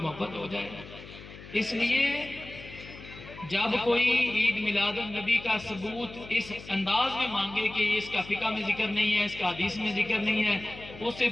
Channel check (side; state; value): left; noise; hum, 16 dB below the sound